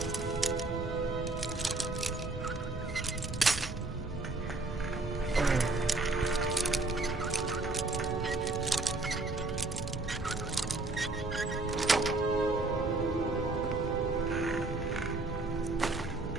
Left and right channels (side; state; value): left; quieter; 3.1 dB